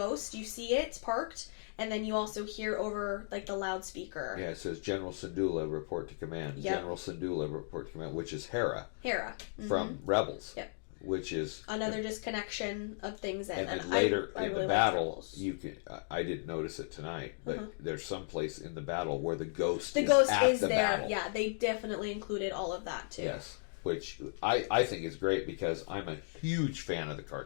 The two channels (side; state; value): right; silent; digital silence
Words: you see it parked, and then you also hear over like the loudspeaker. Yeah, it says General Syndulla report to command. Yep. General Syndulla report to command, which is Hera. Mm-hmm. From Rebels. Yep. Which is another disconnection of things. And then later I in really the battle, Rebels. you can. I didn't notice it tonight, but there's some place in the battle where the ghost is there. battle. Yeah, they definitely included all of that too. Yes, which I think is great because I'm a huge fan of the